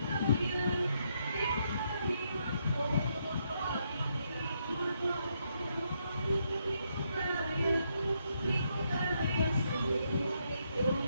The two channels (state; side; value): inverted; both; correlation -0.77